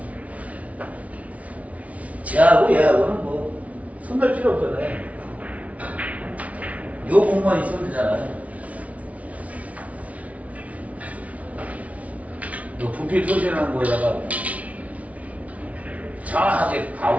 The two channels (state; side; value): late; left; 0.067 ms